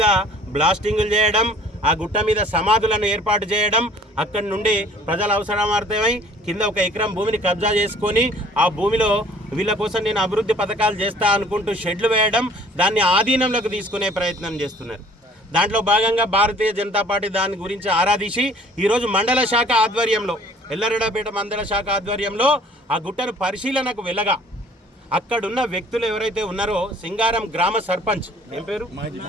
బ్లాస్టింగులు చేయడం, ఆ గుట్ట మీద సమాధులను ఏర్పాటు చేయడం, అక్కడి నుండి ప్రజల అవసరమార్థమై కింద 1 ఎకరం భూమిని కబ్జా చేసుకొని ఆ భూమిలో వీళ్ళ కోసం నేను అభివృద్ధి పథకాలు చేస్తా అనుకుంటూ షెడ్లు వేయడం, దాన్ని ఆధీనంలోకి తీసుకునే ప్రయత్నం చేస్తున్నారు. దాంట్లో భాగంగా భారతీయ జనతా పార్టీ దాని గురించి ఆరాధించి ఈరోజు మండల శాఖ ఆధ్వర్యంలో ఎల్లారెడ్డిపేట మండల శాఖ ఆధ్వర్యంలో ఆ గుట్టను పరిశీలనకు వెళ్ళగా అక్కడున్న వ్యక్తులు ఎవరైతే ఉన్నారో సింగారం గ్రామ సర్పంచ్ ఏం పేరు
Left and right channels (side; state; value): both; normal; correlation 0.53